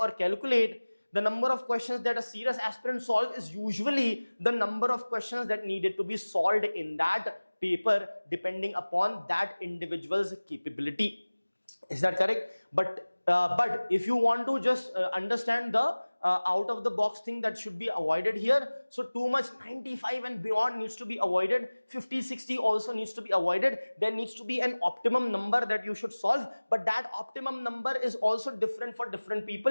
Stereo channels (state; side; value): inverted; both; correlation -1.00